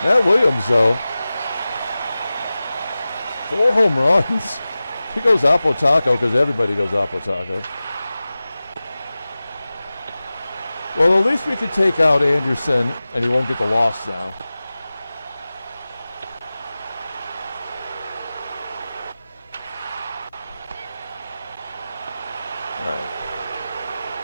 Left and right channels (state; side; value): inverted; both; correlation -0.96